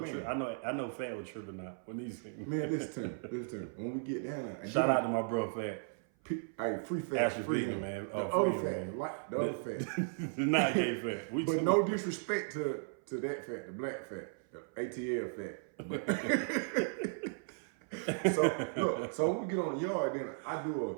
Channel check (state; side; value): silent; left; 54 dB below the other